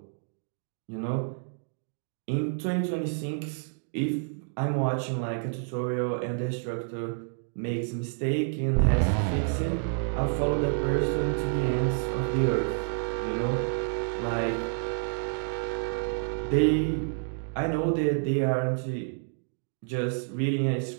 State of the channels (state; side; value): silent; left; digital silence